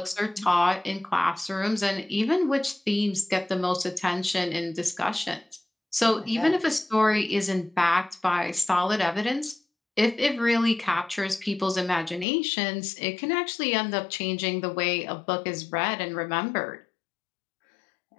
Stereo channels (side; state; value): right; drops out; at 12.2 s